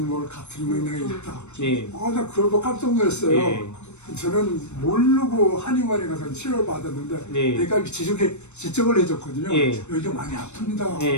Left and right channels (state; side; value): late; right; 0.82 ms